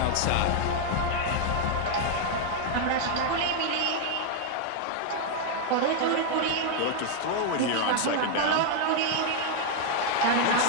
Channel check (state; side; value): different; both; correlation 0.00